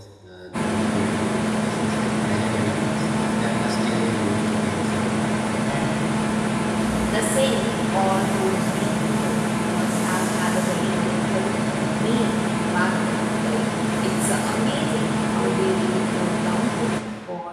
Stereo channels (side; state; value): both; identical; correlation 1.00